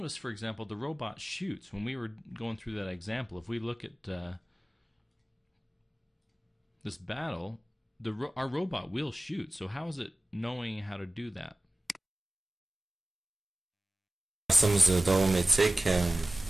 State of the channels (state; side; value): normal; both; correlation 0.95